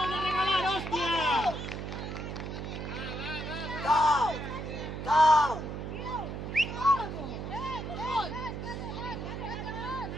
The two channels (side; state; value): right; noise; hum, 6 dB below the sound